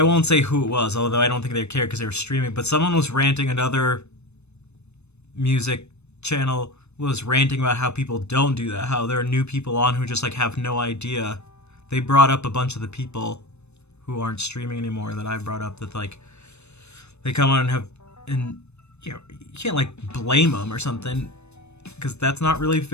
won't say who it was, although I don't think they cared because they were streaming, but someone was ranting, another music channel was ranting about how people don't do that, how there are new people on who just like have no idea. They brought up a bunch of the people who aren't streaming anymore that I brought up, that like they come on and have, and you know, you can't like blame them or something, because that's not really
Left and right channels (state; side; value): late; right; 0.81 ms